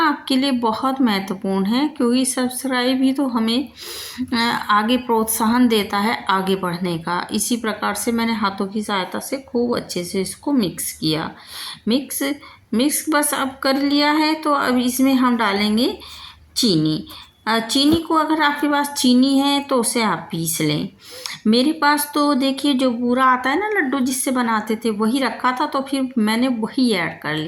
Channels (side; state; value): both; identical; correlation 1.00